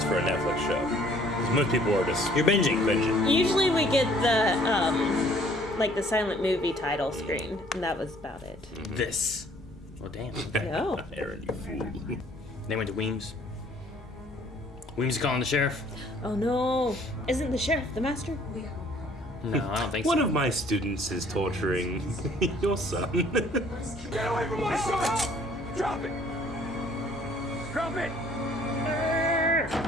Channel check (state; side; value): normal; both; correlation 0.58